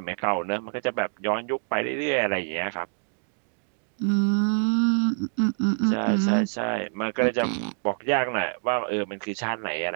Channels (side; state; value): left; silent; digital silence